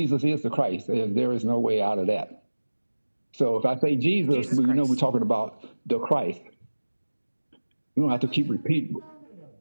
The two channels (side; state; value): both; inverted; correlation -1.00